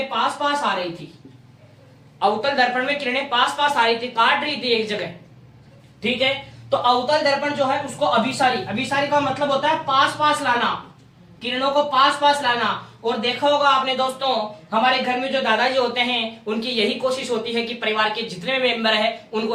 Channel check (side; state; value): both; identical; correlation 1.00